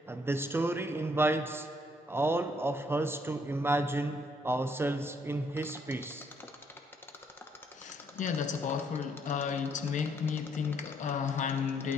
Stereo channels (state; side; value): normal; both; correlation 0.69